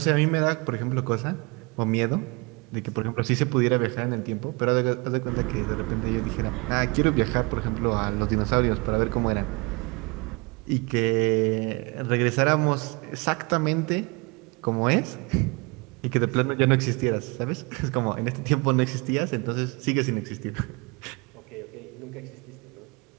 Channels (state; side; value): quieter; left; 28.4 dB